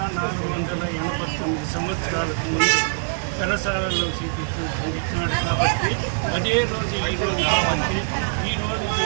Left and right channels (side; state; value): left; silent; 55 dB below the other